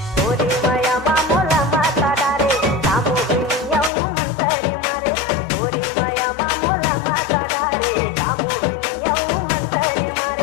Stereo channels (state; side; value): drops out; right; at 3.9 s